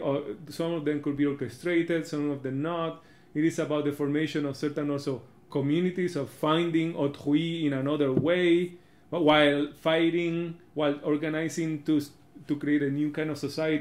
Or some of them could be orchestrated, some of them not. It is about the formation of certain also communities, of finding autrui in another way, while fighting, while organizing to create a new kind of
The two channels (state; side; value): identical; both; correlation 1.00